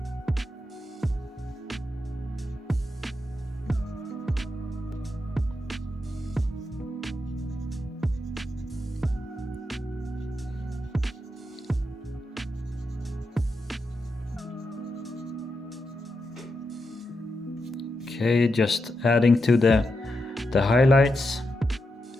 Okay, just adding to the highlights.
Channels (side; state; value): both; normal; correlation 0.86